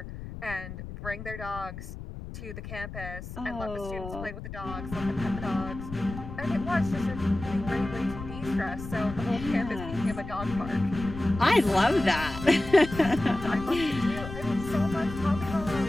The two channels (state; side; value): noise; left; rumble, 10 dB below the sound